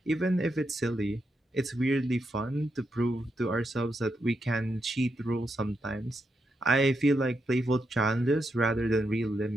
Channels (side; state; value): both; normal; correlation 0.83